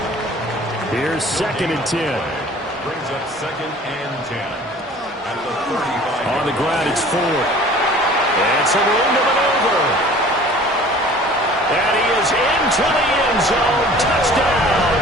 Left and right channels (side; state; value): both; normal; correlation 0.47